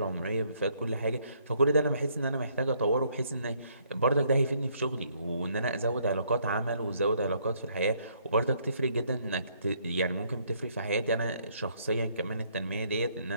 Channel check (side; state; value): both; inverted; correlation -0.68